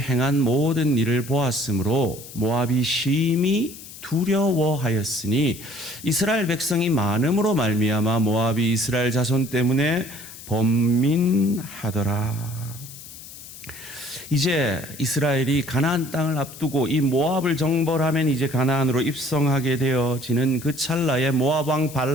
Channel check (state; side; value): noise; left; hiss, 15 dB below the sound